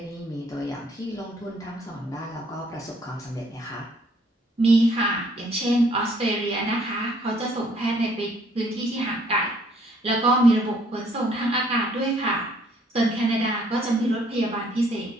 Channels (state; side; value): normal; both; correlation 0.63